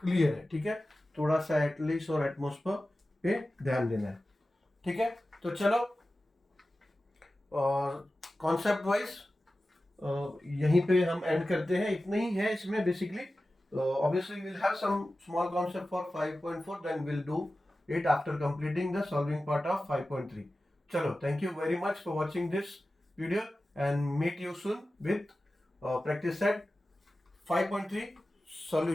क्लियर है, ठीक है। थोड़ा सा एटलीस्ट और एटमोस्फेयर पे ध्यान देना है, ठीक है। तो चलो, और कॉन्सेप्ट वाइज यहीं पे हम एंड करते हैं, इतना ही है इसमें basically. Obviously will have some small concept for 5.4, then will do it after completing the solving part of 5.3. Chalo, thank you very much for watching this video, and meet you soon with practice set 5.3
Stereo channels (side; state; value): both; normal; correlation 0.95